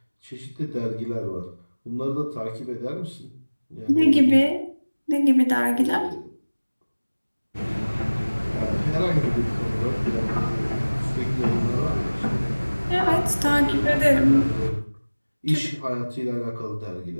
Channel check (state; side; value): inverted; both; correlation -1.00